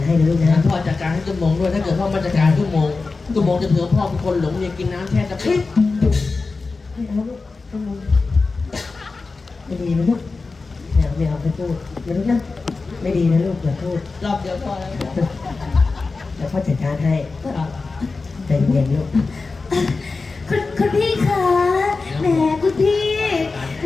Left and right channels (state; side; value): quieter; right; 4.0 dB